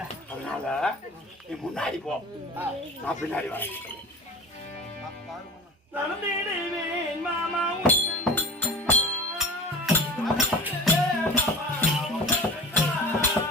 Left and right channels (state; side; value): normal; both; correlation 0.34